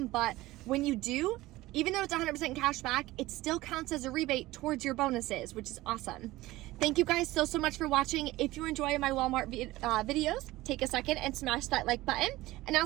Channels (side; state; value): left; quieter; 18.1 dB